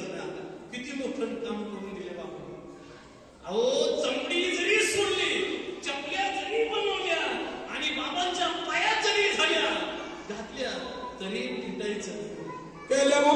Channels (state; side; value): identical; both; correlation 1.00